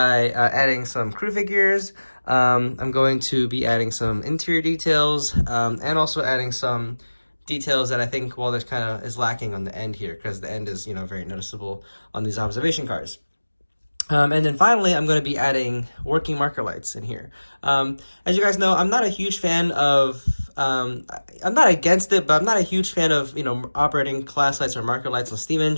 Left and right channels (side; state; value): both; inverted; correlation -1.00